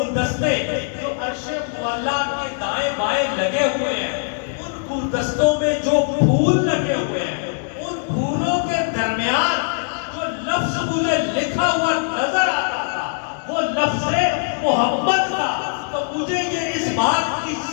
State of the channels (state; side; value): silent; right; digital silence